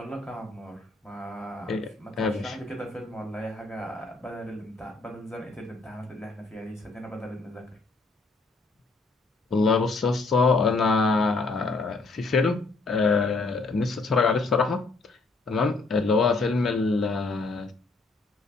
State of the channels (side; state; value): right; quieter; 3.6 dB